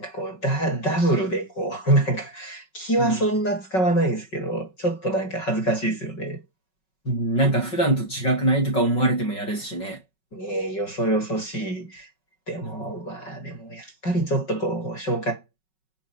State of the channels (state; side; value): late; right; 5.4 ms